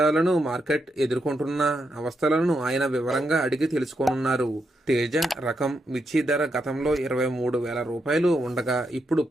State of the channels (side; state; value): both; normal; correlation 0.82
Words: మార్కెట్ ఎదుర్కొంటున్న అవస్థలను ఆయన వివరంగా అడిగి తెలుసుకోనున్నారు. తేజ రకం మిర్చి ధర గతంలో 23,000 రూపాయలు ఉండగా ఇప్పుడు